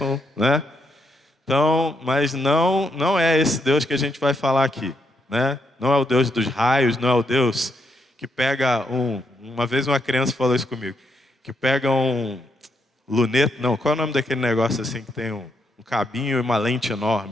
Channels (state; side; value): normal; both; correlation 0.79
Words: né? Então, mas não é esse Deus que a gente vai falar aqui, né? Não é o Deus dos raios, não é o Deus que pega uma vez uma criança falou isso comigo, que pega um luneta, não, qual é o nome daquele negócio assim que tem um cabinho e uma lente